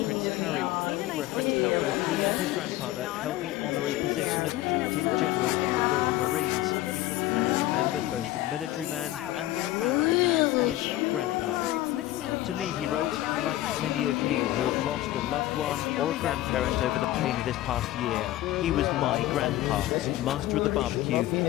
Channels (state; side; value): quieter; right; 15.6 dB